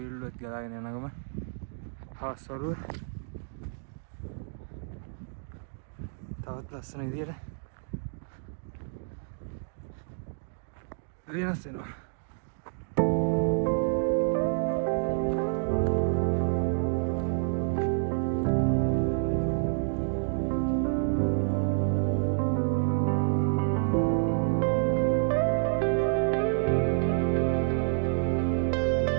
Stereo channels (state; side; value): silent; left; digital silence